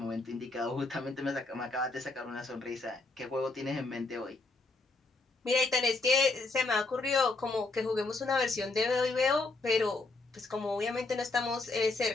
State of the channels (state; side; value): quieter; right; 3.4 dB